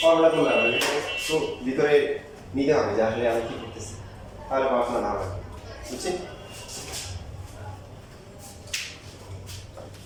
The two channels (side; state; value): both; identical; correlation 1.00